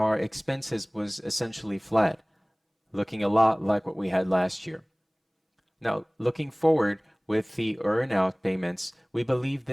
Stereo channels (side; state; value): both; identical; correlation 1.00